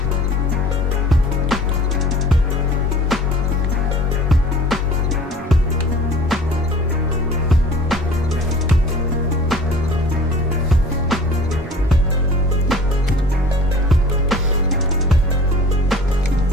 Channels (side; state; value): both; normal; correlation 0.45